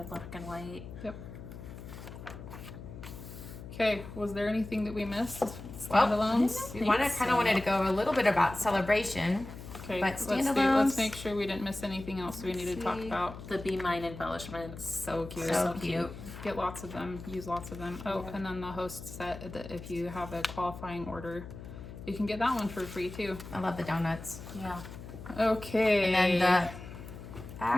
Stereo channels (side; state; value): left; noise; hum, 12 dB below the sound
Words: black and white. Yep. Okay, was there anything that we missed? Well, Standalones? We kind of wanted to go a little bit about celebration. Okay, But let's make sure we didn't miss anything else we need to talk about. The Be Mine embellishments. So cute. So cute. Get lots of them. Use lots of them. Oh, and then the host set that if you have a qualifying order, you can get that one for free too. I love the donuts. Yeah. Okay. And then